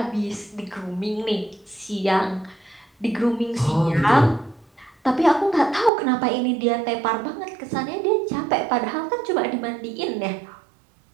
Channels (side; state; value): left; drops out; at 5.9 s